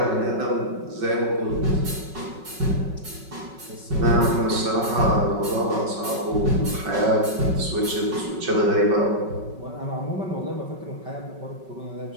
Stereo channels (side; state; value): left; late; 5.3 ms